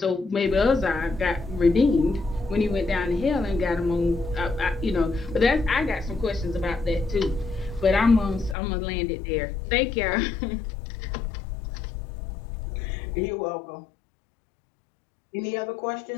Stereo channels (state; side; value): drops out; right; at 8.6 s